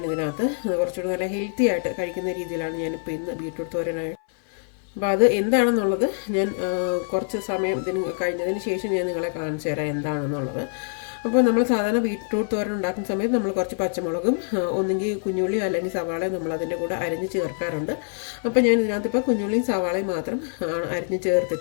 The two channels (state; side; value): silent; right; 59 dB below the other